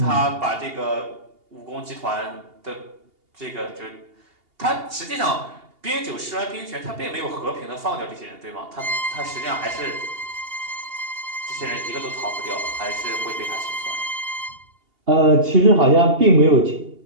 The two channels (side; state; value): left; late; 2.8 ms